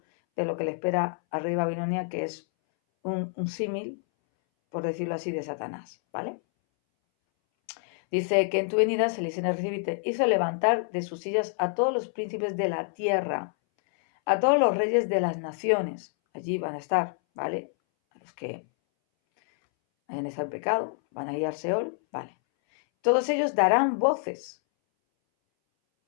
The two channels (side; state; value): right; silent; 60 dB below the other